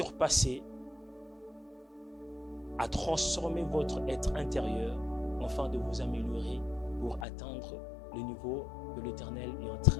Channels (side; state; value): right; drops out; at 7.2 s